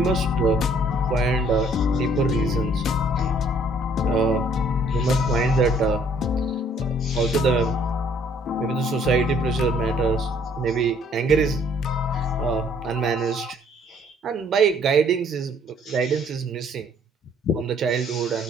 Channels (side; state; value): both; normal; correlation 0.61